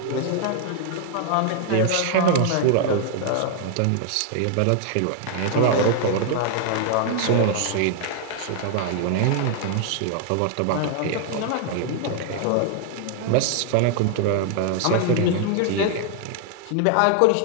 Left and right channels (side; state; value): both; different; correlation 0.00